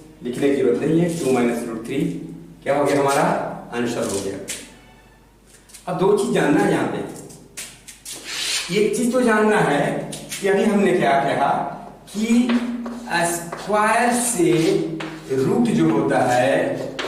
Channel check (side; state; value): both; identical; correlation 1.00